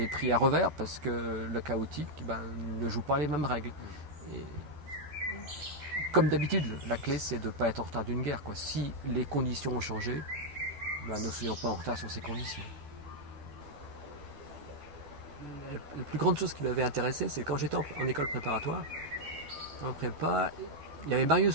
pris à revers parce que le chaotique ne joue pas les mêmes règles. Et comme d'habitude, la clé, c'est de ne pas être en retard d'une guerre. Si les conditions ont changé, ne soyons pas en retard sur ces conditions. La plus grande chose qui m'avait intéressé, c'est quand j'étais en école préparatoire, en prépa, il y avait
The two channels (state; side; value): late; left; 12 ms